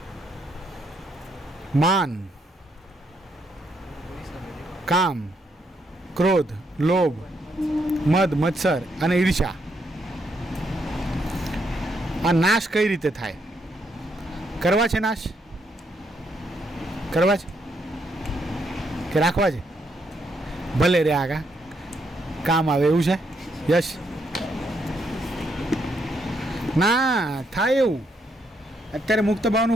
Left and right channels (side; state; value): both; normal; correlation 0.76